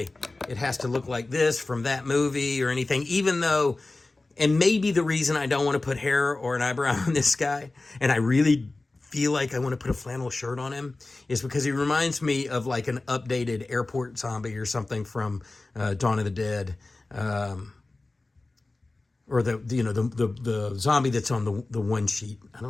it has to look like this from that movie or anything, even though, and maybe the reason I don't want to put hair or an eyebrow on this guy, and I really feel like I want to put a flannel shirt on him, is because he reminds me of like an updated airport zombie or something from Dawn of the Dead, or the zombie that's on the one sheet. I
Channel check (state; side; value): quieter; right; 3.2 dB